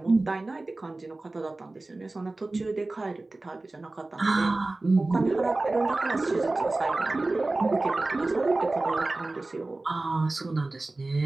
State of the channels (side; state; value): left; quieter; 3.1 dB